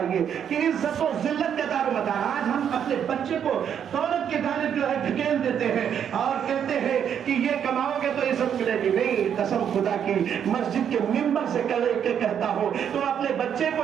کہ عزت و ذلت کا دار مدار. آج ہم اپنے بچے کو دولت کی جانب جو ہے دھکیل دیتے ہیں اور کہتے ہیں کہ یہ کماؤ گے تو عزت ملے گی. نہیں, قسم خدا کی مسجد کے ممبر سے کہتا ہوں, تم اپنے بچے کو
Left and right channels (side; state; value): left; quieter; 8.6 dB